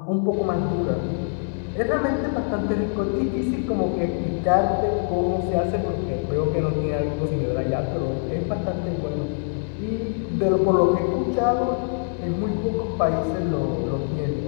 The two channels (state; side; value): silent; right; digital silence